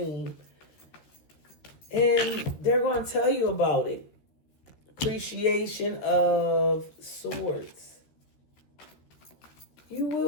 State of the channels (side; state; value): right; late; 13 ms